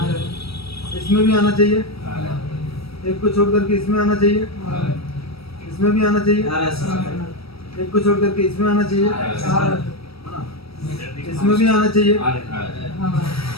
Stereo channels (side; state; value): right; late; 0.76 ms